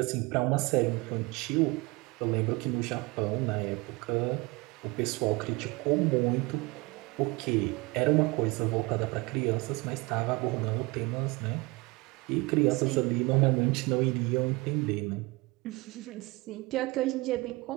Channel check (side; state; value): left; quieter; 24.5 dB